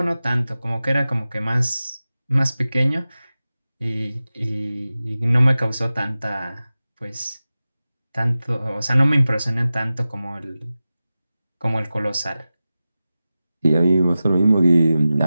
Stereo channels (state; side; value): inverted; both; correlation -0.95